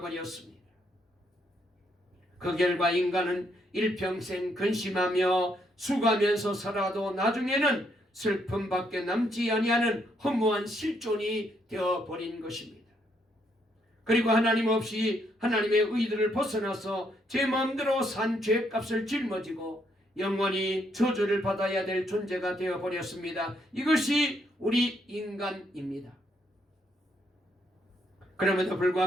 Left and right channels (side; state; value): both; normal; correlation 0.74